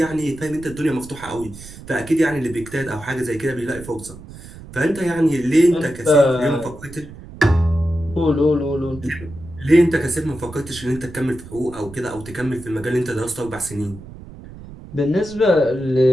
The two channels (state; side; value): noise; right; rumble, 16 dB below the sound